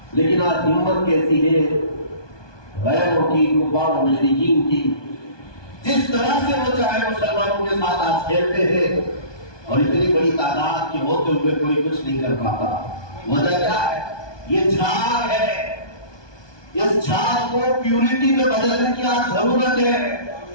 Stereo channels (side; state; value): right; late; 1.2 ms